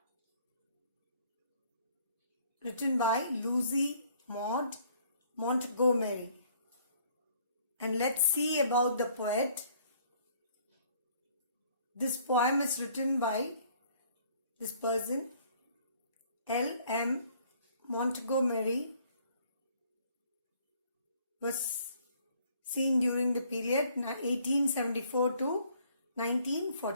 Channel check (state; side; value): inverted; both; correlation -0.61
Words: Written by Lucy Maud Montgomery. And let's see about the poet. This poem is written by this person, L.M. Montgomery, was seen during the period 1874 to